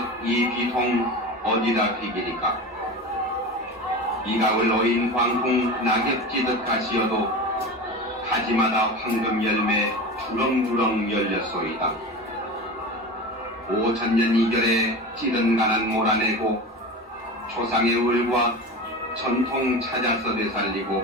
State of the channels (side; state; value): both; normal; correlation 0.29